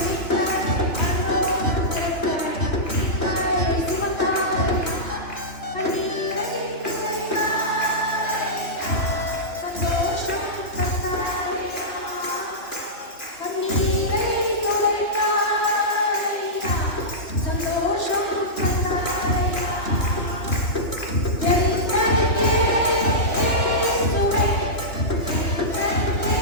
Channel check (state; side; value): late; right; 3.1 ms